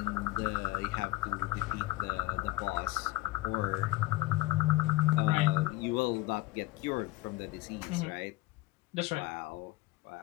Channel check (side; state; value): right; quieter; 17.9 dB